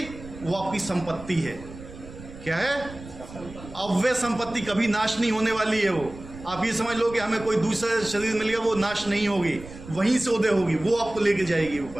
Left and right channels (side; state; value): right; noise; rumble, 15 dB below the sound